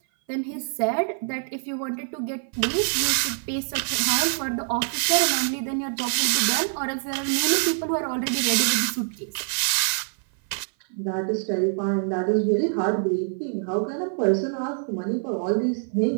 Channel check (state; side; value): silent; left; 57 dB below the other